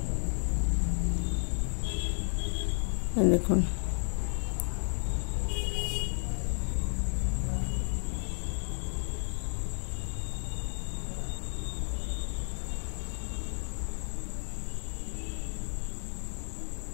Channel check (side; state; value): right; silent; 56 dB below the other